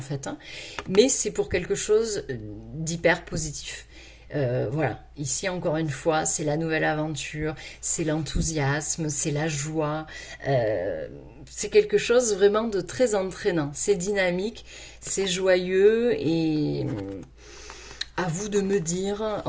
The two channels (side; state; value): both; identical; correlation 1.00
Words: fait. Hein. Mais c'est pour quelque chose d'hyper positif. Voilà, ici encore une fois, c'est la nouvelle aventure, c'est l'enthousiasme, c'est la joie, c'est quelque chose vraiment de très entraînant, c'est dynamique, c'est joyeux et à vous de me dire